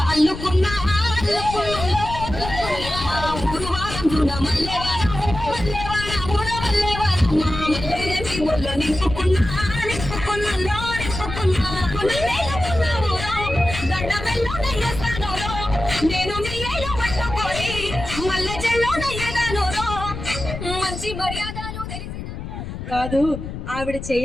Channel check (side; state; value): left; noise; rumble, 8 dB below the sound